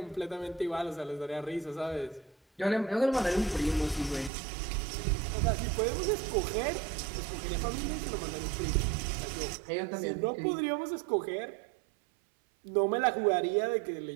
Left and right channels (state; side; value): drops out; left; at 4.3 s